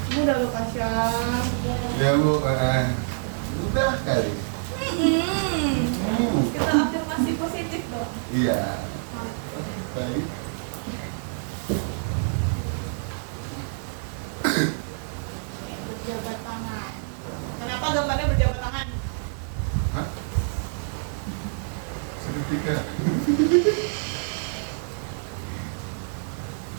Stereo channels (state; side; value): silent; left; digital silence